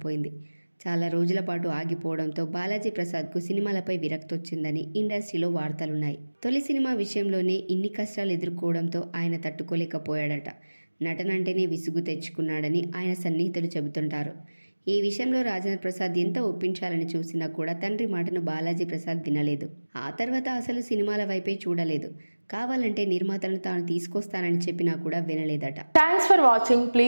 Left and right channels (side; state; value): both; inverted; correlation -1.00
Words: చాలా రోజుల పాటు ఆగిపోవడంతో బాలాజీ ప్రసాద్కు సినిమాలపై విరక్తి వచ్చిందని ఇండస్ట్రీలో వార్తలున్నాయి. తొలి సినిమా విషయంలోనే ఇన్ని కష్టాలు ఎదుర్కోవడంతో ఆయన తట్టుకోలేకపోయాడట. నటనంటేనే విసుగు తెచ్చుకున్నాడని ఆయన సన్నిహితులు చెబుతుంటారు. ఈ విషయంలో రాజేంద్ర ప్రసాద్ ఎంత ఒప్పించాలని చూసినా కూడా తండ్రి మాటను బాలాజీ ప్రసాద్ వినలేదు. ఆ తర్వాత అసలు సినిమాల వైపే చూడలేదు. కావాలంటే నిర్మాతలను తాను తీసుకొస్తానని చెప్పినా కూడా వినలేదట. Thanks for watching.